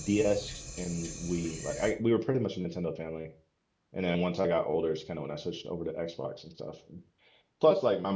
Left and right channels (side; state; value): both; identical; correlation 1.00